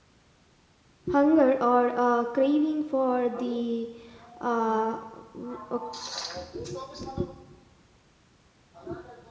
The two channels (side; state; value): both; identical; correlation 1.00